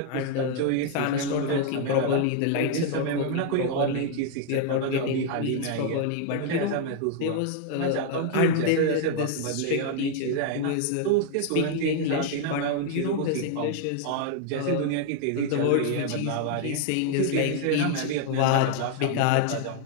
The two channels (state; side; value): different; both; correlation 0.00